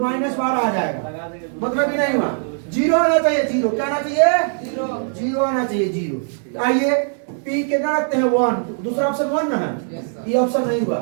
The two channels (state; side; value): silent; left; 65 dB below the other